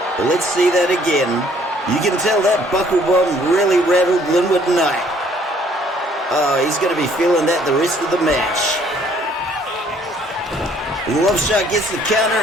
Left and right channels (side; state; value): both; normal; correlation 0.61